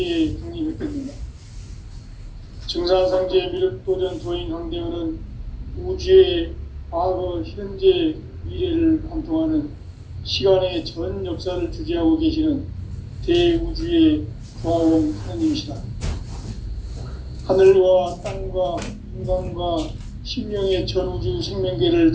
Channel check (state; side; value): identical; both; correlation 1.00